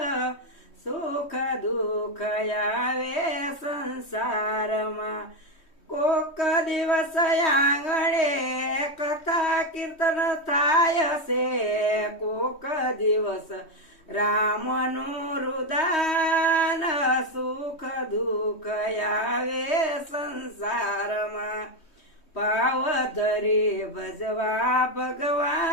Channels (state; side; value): late; right; 3.1 ms